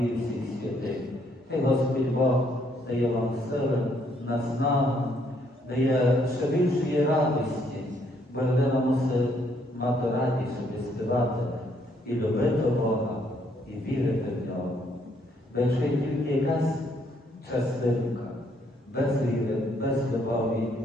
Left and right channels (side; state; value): both; normal; correlation 0.69